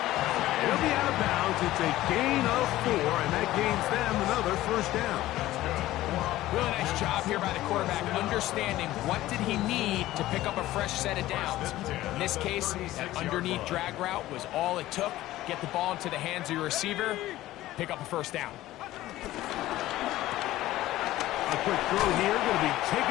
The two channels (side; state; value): right; quieter; 15.7 dB